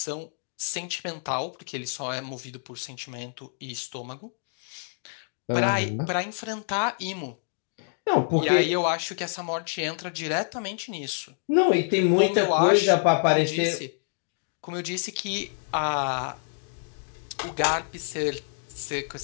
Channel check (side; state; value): right; silent; digital silence